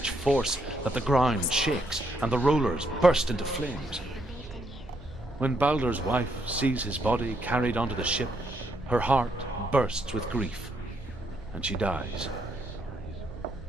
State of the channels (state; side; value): noise; right; hum, 19 dB below the sound